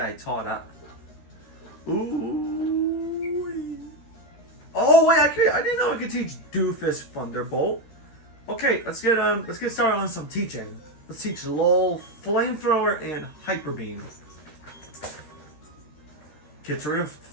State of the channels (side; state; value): right; late; 13 ms